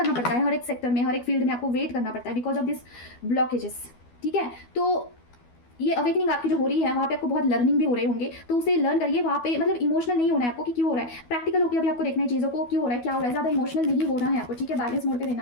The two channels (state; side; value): late; right; 12 ms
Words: पड़ता है हर एक सेक्टर में, हर एक फील्ड में आपको वेट करना पड़ता है बिकॉज ऑफ दिस ब्लॉकेजेस, ठीक है। तो ये अवेकनिंग आपकी जो हो रही है वहाँ पे आपको बहुत लर्निंग भी हो रहे होंगे, तो उसे लर्न करिए वहाँ पे, मतलब इमोशनल नहीं होना है आपको कि क्यों हो रहा है, प्रैक्टिकल होकर अभी आपको देखना है चीज़ों को, क्यों हो रहा है, क्या हो रहा है, ज़्यादा इमोशनल नहीं होना है आपको, ठीक है, बैलेंस मोड पे